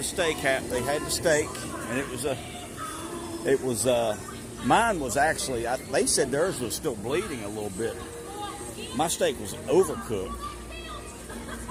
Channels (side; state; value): both; identical; correlation 1.00